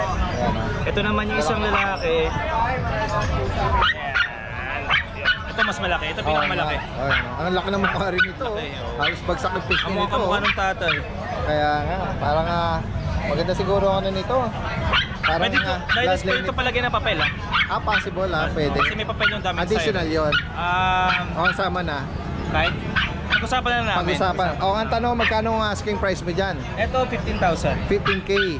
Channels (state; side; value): identical; both; correlation 1.00